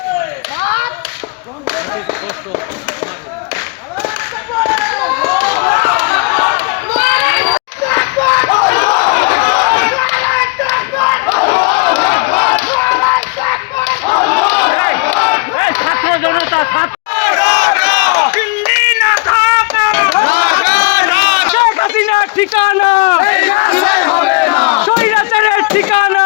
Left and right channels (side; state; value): right; quieter; 28.5 dB